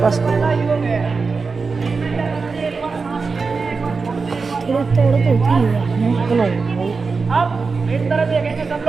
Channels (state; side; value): quieter; left; 4.6 dB